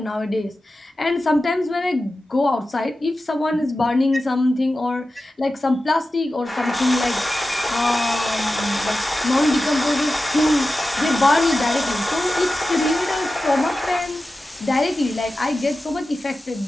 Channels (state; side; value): normal; both; correlation 0.94